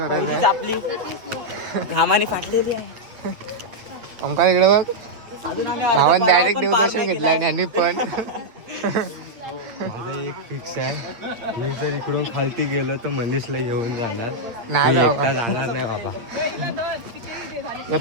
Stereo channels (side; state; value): left; late; 9.0 ms